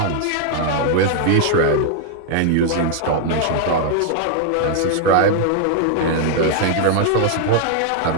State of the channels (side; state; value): both; different; correlation 0.00